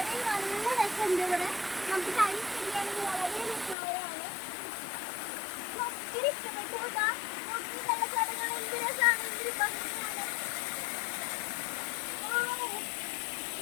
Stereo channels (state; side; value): drops out; right; at 3.8 s